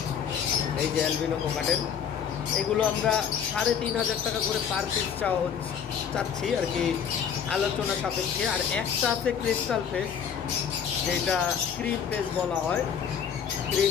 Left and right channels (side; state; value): right; quieter; 7.7 dB